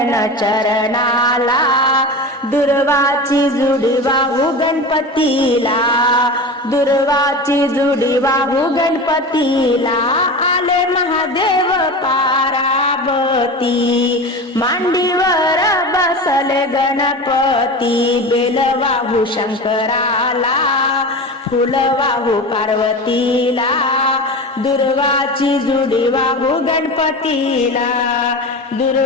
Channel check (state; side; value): normal; both; correlation 0.28